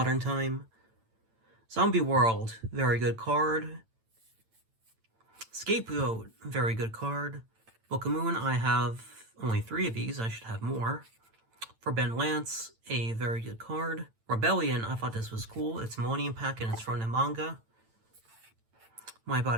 time. Zombie World, very good card. Scapegoat, very good card. Book of Moon, I have only 3 of these. I should have more. Forbidden Lance, a very good card. Rebellion, I thought this was cool. It's Millennium Pack and it's from the manga. My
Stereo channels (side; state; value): left; late; 8.9 ms